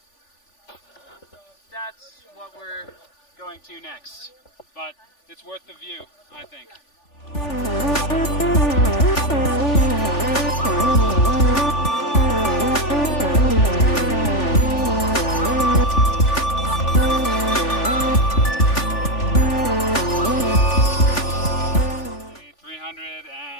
that's what we're going to next. But it's worth the view, I think. Maybe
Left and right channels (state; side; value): late; right; 3.4 ms